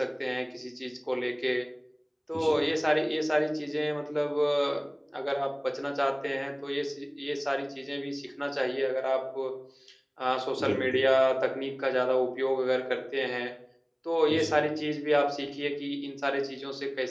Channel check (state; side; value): identical; both; correlation 1.00